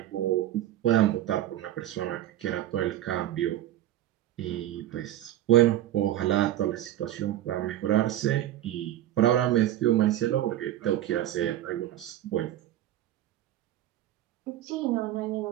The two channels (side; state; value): left; quieter; 13.1 dB